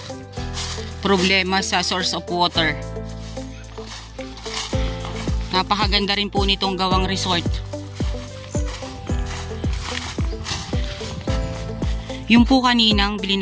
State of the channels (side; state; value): both; identical; correlation 1.00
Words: problema sa source of water. Napakaganda rin po nitong gawang resort. Yung po kaninang